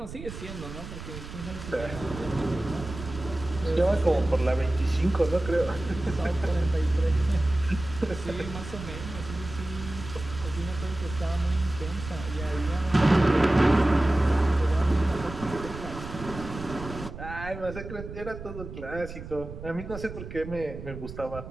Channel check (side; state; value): right; noise; rumble, 11 dB below the sound